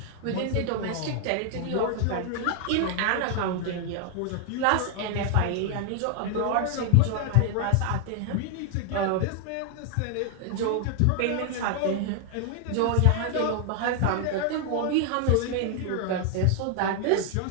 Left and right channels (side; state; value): both; different; correlation 0.00